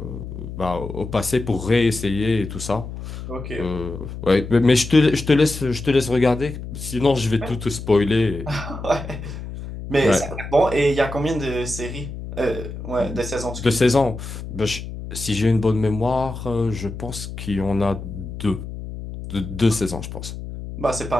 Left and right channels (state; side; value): noise; left; hum, 9 dB below the sound